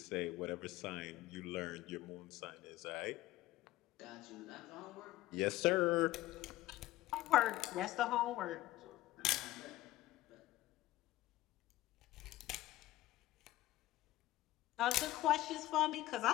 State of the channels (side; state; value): right; quieter; 16.0 dB